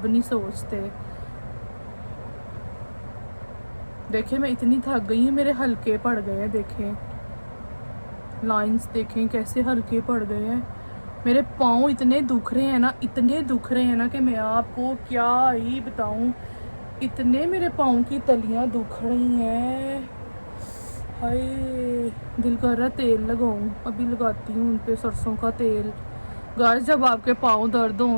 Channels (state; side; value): inverted; both; correlation -1.00